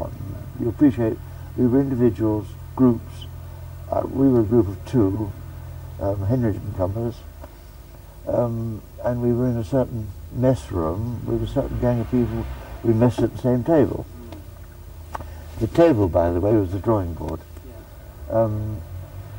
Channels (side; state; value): both; identical; correlation 1.00